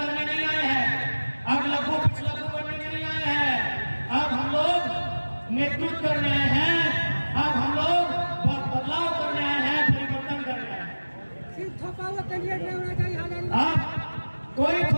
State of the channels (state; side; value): inverted; both; correlation -1.00